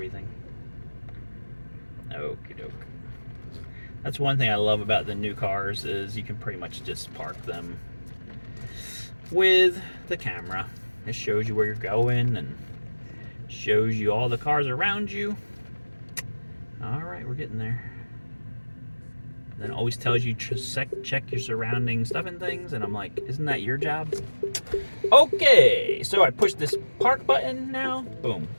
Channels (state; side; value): inverted; both; correlation -1.00